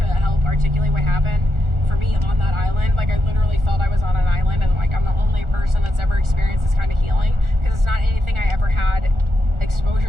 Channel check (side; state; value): left; late; 1.4 ms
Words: help articulate what happened for me on that island. Like, I literally felt I was on an island, and like I'm the only person that's ever experienced this kind of healing, because it's not anything I ever had